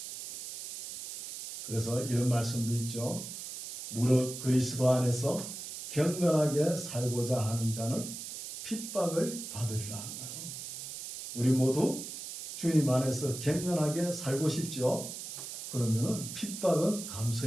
그래서 이런 말씀도 있죠. 무릇 그리스도 안에서 경건하게 살고자 하는 자는 핍박을 받으리라는 거예요. 우리 모두 주님 안에서 경건하게 살고 싶죠. 그러면은 핍박은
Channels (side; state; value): right; noise; hiss, 9 dB below the sound